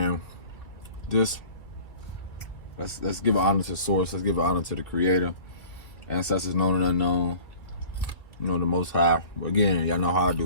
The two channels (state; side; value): late; right; 2.7 ms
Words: Just let's give honor to source. Let's give honor to the creator. Ancestors known and unknown. You know, the Most High. But again, y'all know how I